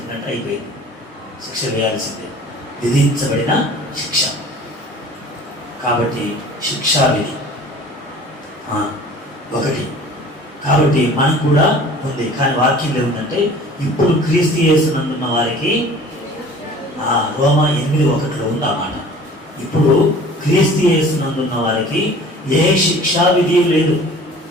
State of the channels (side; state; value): both; normal; correlation 0.46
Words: అయిపోయింది. శిక్ష వేయాల్సిందే, విధించబడిన శిక్ష. కాబట్టి శిక్షా విధి ఒకటి. కాబట్టి మనకు కూడా ఉంది. కానీ వాక్యం ఏముందంటే ఇప్పుడు క్రీస్తు యేసునందున్న వారికి రోమా 8:1 ఉంది ఆ మాట. ఇప్పుడు క్రీస్తు యేసునందున్న వారికి ఏ శిక్షా విధి లేదు.